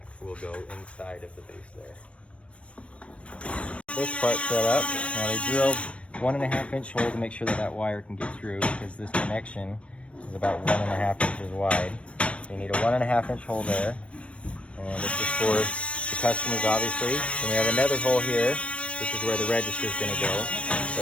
will go inside of the base there. This part set up. Now they drilled 1.5 inch hole to make sure that that wire can get through, because this connection is about 1.5 inches wide. So you need a 1.5 inch hole there. And this is for the customers, obviously. Then we have another hole here. This is where the register is going to go.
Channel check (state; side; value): late; right; 0.061 ms